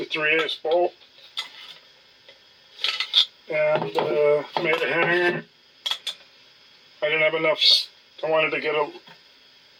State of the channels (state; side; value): identical; both; correlation 1.00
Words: 3/8 bolt and made a hanger. I didn't have enough. I wanted to get a